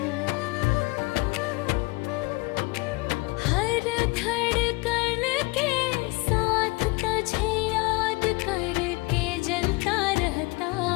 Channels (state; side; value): quieter; right; 25.1 dB